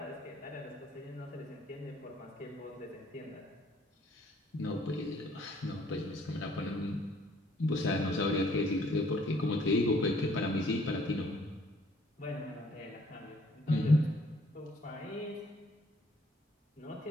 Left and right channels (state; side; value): normal; both; correlation 0.61